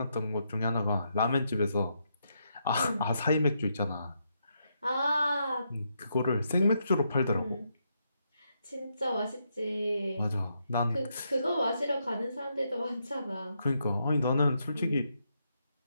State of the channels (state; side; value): inverted; both; correlation -0.80